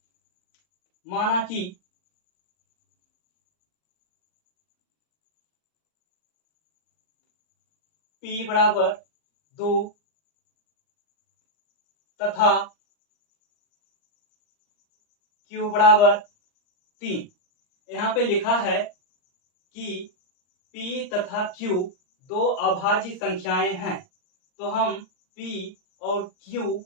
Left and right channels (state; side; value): late; right; 39 ms